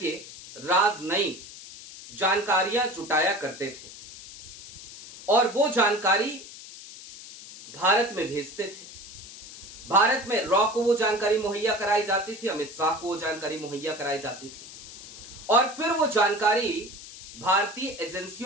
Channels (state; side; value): noise; left; hiss, 15 dB below the sound